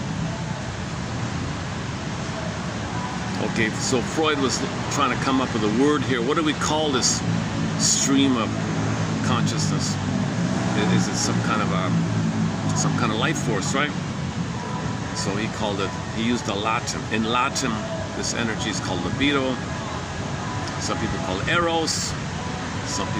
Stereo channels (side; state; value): both; identical; correlation 1.00